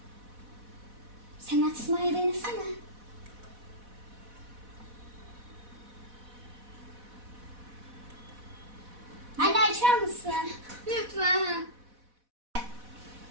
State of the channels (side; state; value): left; late; 4.1 ms